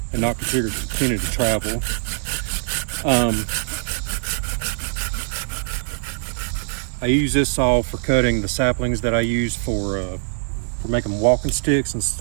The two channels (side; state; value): left; silent; digital silence